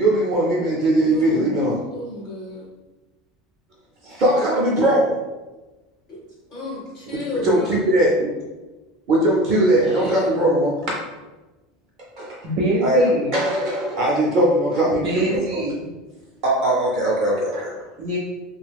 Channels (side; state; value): both; normal; correlation 0.37